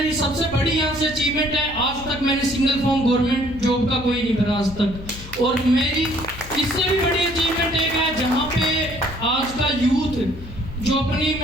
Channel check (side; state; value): left; noise; hum, 15 dB below the sound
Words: सबसे बड़ी यहाँ से अचीवमेंट है, आज तक मैंने सिंगल फॉर्म गवर्नमेंट जॉब का कोई नहीं भरा आज तक। और मेरी इससे भी बड़ी अचीवमेंट एक है जहाँ पे आज का यूथ जो अपनी,